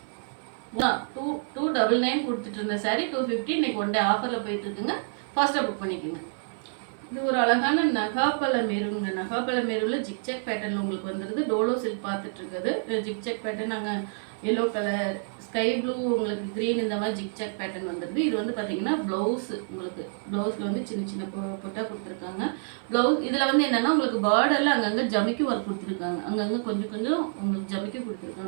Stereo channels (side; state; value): left; silent; 60 dB below the other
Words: 299 கொடுத்துட்டு இருந்த சாரி 250 இன்னைக்கு ஒன் டே ஆஃபரில் போயிட்டு இருக்குங்க. ஃபாஸ்ட்டாக புக் பண்ணிக்கோங்க. இது ஒரு அழகான நகாப்பழ மெருங்க. நகாப்பழ மெருவில் ஜிக்ஜாக் பேட்டர்னில் உங்களுக்கு வந்துடுது. டோலோ சில்க் பார்த்துட்டு இருக்குது. ஜிக்ஜாக் பேட்டர்ன் நாங்கள் எல்லோ கலர், ஸ்கை ப்ளூ, உங்களுக்கு க்ரீன், இந்த மாதிரி ஜிக்ஜாக் பேட்டர்ன் வந்துடுது. இது வந்து பார்த்தீங்கன்னா ப்ளவுஸ். உங்களுக்கு ப்ளவுஸில் வந்து சின்ன சின்ன பொட்டா கொடுத்துருக்காங்க. ப்ளவுஸ் இதில் வந்து என்னென்னா உங்களுக்கு பார்டரில் அங்கங்கே ஜமிக்கி ஒர்க் கொடுத்துருக்காங்க. அங்கங்கே கொஞ்சம் உங்களுக்கு ஜமிக்கி